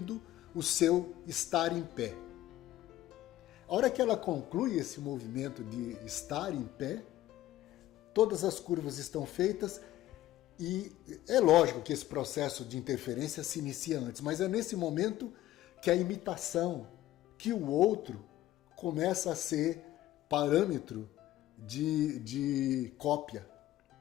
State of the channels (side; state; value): right; quieter; 14.6 dB